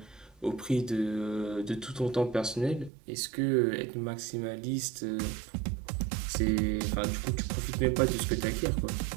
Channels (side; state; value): left; drops out; at 2.9 s